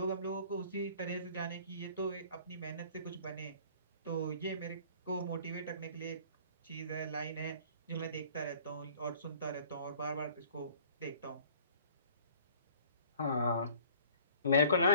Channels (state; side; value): inverted; both; correlation -0.52